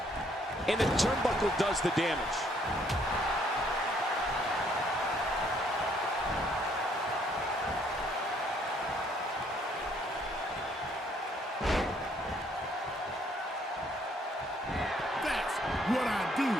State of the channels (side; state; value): both; normal; correlation 0.66